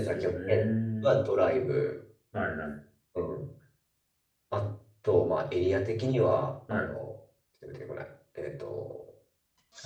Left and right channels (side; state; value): both; identical; correlation 1.00